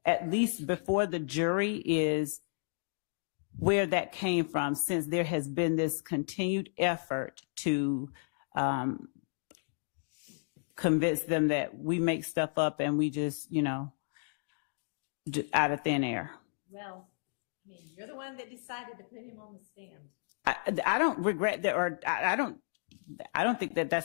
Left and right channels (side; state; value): right; silent; digital silence